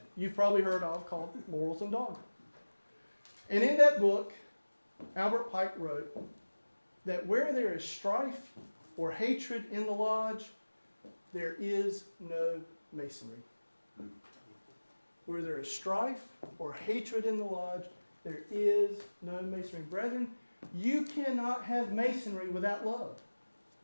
you've probably heard of called Morals and Dogma. And in that book, Albert Pike wrote that where there is strife or hatred in the lodge, there is no Masonry. Where there is strife or hatred in the lodge, there is no Masonry. Brethren, you cannot have Masonry without love.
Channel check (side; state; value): both; inverted; correlation -1.00